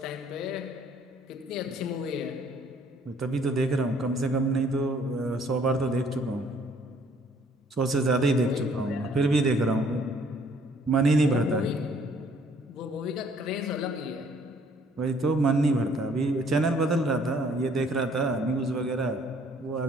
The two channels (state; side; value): normal; both; correlation 0.61